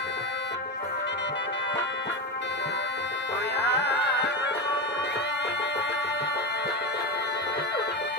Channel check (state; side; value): normal; both; correlation 0.16